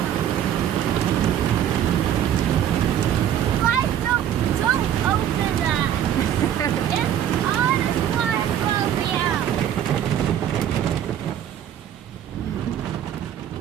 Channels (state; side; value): quieter; left; 10.4 dB